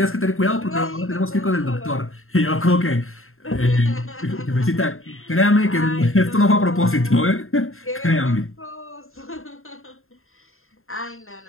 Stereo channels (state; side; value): late; right; 0.61 ms